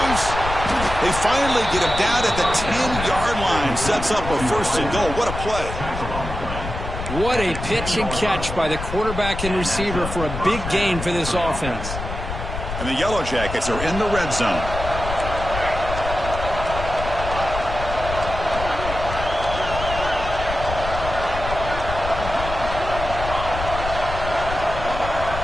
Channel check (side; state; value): left; noise; rumble, 7 dB below the sound